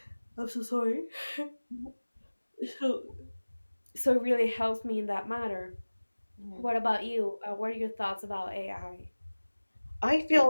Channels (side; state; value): both; inverted; correlation -1.00